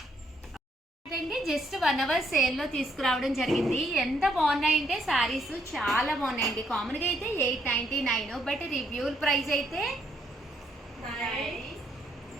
Just 1 hour sale లో తీసుకురావడం జరిగింది. ఎంత బాగున్నాయంటే శారీస్ చాలా బాగున్నాయండి. కామన్ గా అయితే 899, బట్ రివ్యూ ప్రైస్ అయితే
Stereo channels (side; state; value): both; normal; correlation 0.72